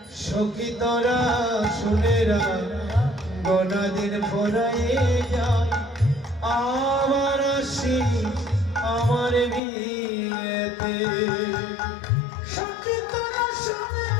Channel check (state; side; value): drops out; right; at 9.6 s